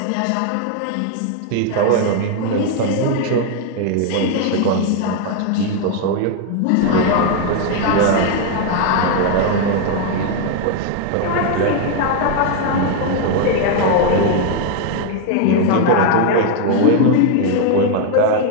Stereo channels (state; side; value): different; both; correlation 0.01